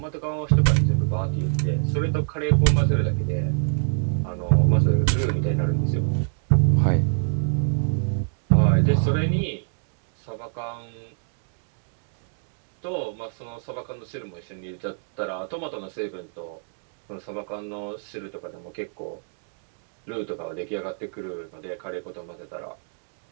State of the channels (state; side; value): silent; left; digital silence